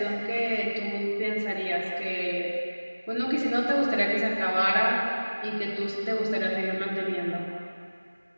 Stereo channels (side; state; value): both; inverted; correlation -1.00